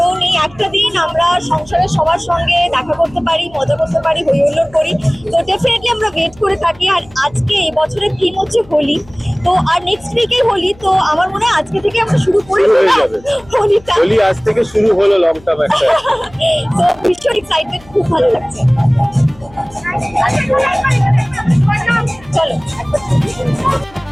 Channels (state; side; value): noise; left; hum, 25 dB below the sound